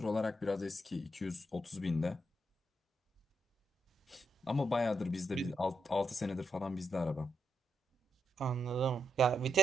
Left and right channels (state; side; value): normal; both; correlation 0.82